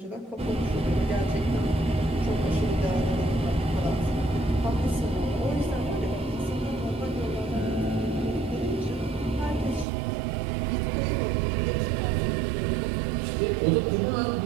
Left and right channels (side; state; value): left; drops out; at 9.9 s